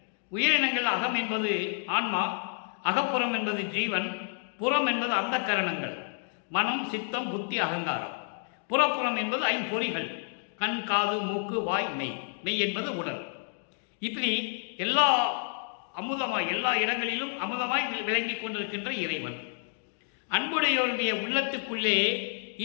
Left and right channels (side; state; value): right; silent; 58 dB below the other